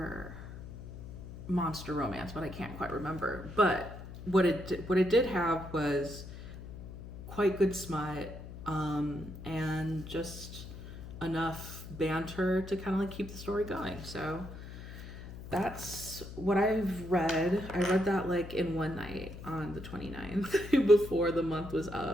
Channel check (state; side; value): noise; left; hum, 12 dB below the sound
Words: monster romance, but I can't quite remember. But what it did have was quite good smut, and just enough banter to kind of like keep the story going. So that's what I've read. I read that like in one night on the 29th before the month was